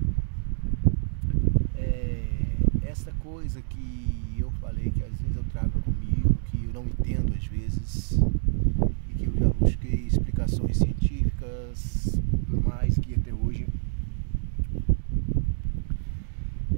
essa coisa que eu falei que às vezes eu trago comigo, que eu não entendo às vezes, e que eu já busquei explicações científicas, por mais que até hoje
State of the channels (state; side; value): silent; left; digital silence